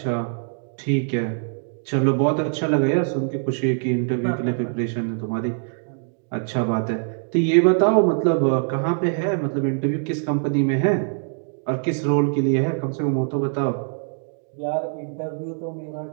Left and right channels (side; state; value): left; silent; digital silence